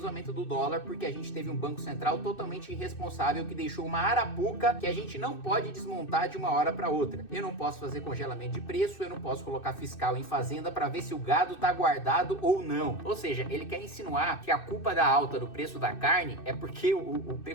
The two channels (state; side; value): late; right; 2.6 ms